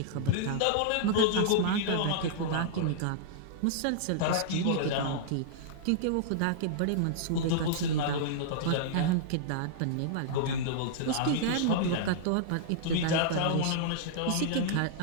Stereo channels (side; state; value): both; different; correlation -0.02